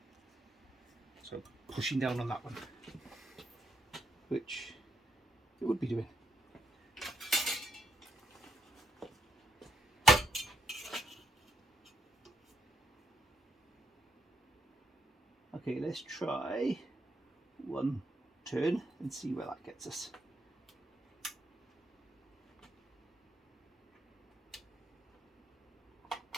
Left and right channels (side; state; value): both; normal; correlation 0.79